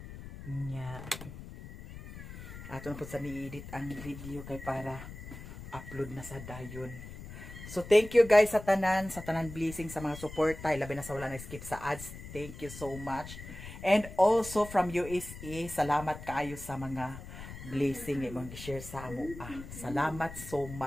Nya. Ato na po sa ni-edit ang video kay para upload na sa dayon. So thank you guys sa tanan blessing sa mga suporta, labi na sa wala na skip sa ads. Thank you so much. And also from USA, salamat kaayo sa mga blessing nga imong gi-share sa amo. Salamat so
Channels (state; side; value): noise; left; rumble, 12 dB below the sound